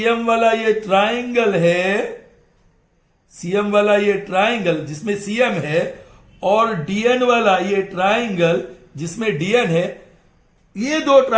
वाला ये ट्राइंगल है, CM वाला ये ट्राइंगल जिसमें CM है और DN वाला ये ट्राइंगल जिसमें DN है. ये दो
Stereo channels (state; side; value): identical; both; correlation 1.00